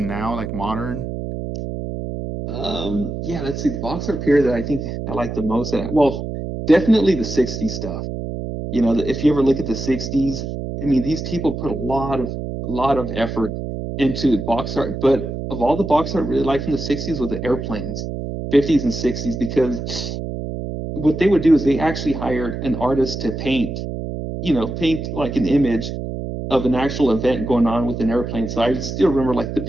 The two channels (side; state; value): right; noise; hum, 5 dB below the sound